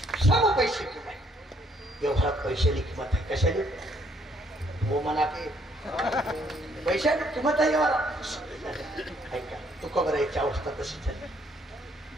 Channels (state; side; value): normal; both; correlation 0.67